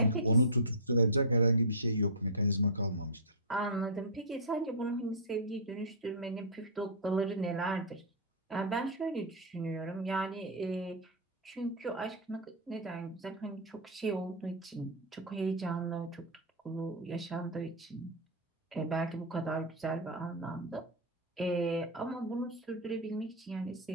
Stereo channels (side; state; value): both; normal; correlation -0.12